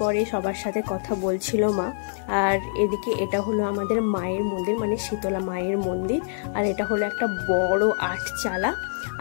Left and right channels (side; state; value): right; silent; digital silence